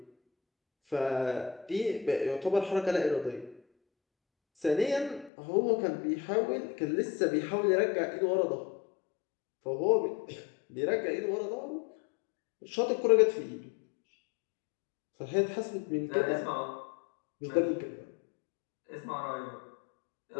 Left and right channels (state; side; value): drops out; right; at 5.3 s